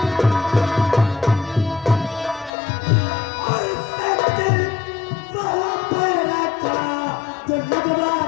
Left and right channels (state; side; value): drops out; right; at 2.5 s